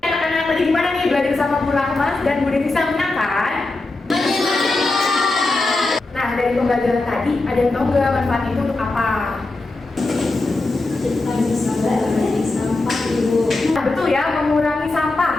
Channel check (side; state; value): right; quieter; 3.1 dB